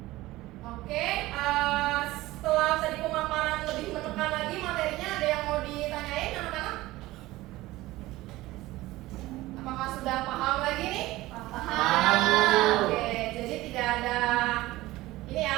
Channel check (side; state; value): left; quieter; 18.0 dB